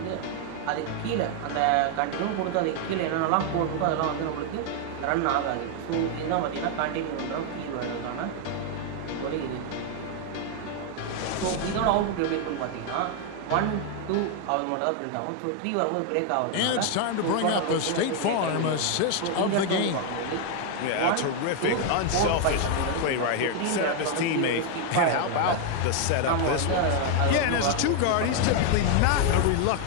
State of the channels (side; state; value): both; different; correlation 0.00